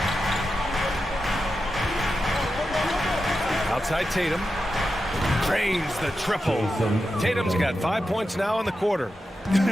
Outside Tatum. Drains the triple. Tatum's got 5 points now in the quarter.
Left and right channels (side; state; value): both; normal; correlation 0.90